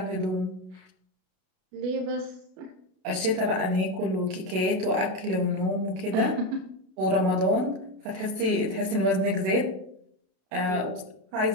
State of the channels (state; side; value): late; left; 32 ms